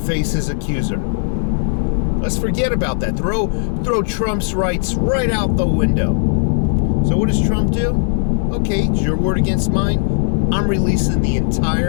his accuser. Let's forget about that. Throw Trump's rights right out the window. So what does Trump do? Okay, it's your word against mine. I'm releasing the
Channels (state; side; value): silent; right; digital silence